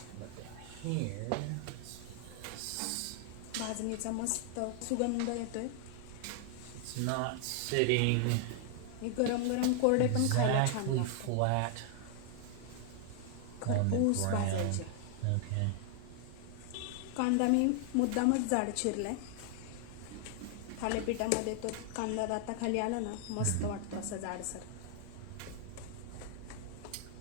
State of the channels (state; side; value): different; both; correlation 0.00